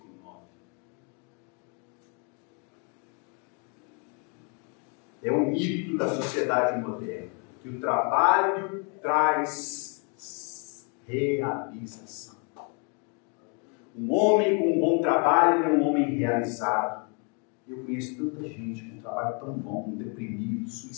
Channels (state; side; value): quieter; right; 37.0 dB